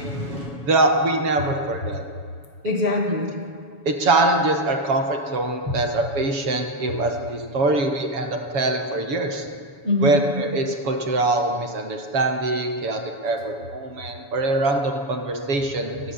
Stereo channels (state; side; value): late; left; 7.1 ms